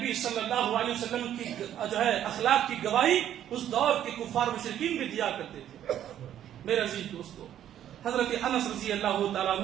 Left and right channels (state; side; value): quieter; left; 11.0 dB